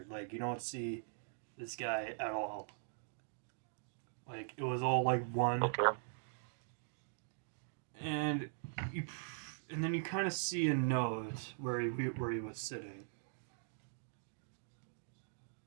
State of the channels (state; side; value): silent; left; digital silence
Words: Like, you don't see this guy at all. Like, it was all like one. Okay. And you, and then you kind of see a note where he was sitting.